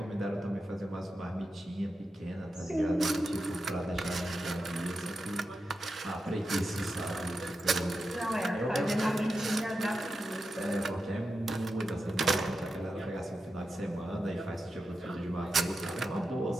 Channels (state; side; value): normal; both; correlation 0.89